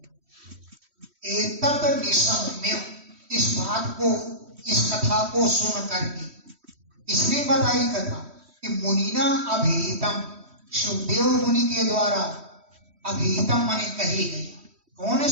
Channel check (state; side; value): late; left; 3.1 ms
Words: इस बात को, इस कथा को सुन करके इसने बताई कथा कि मुनिना अभिहितम, सुखदेव मुनि के द्वारा अभिहितम माने कही गई। कौन है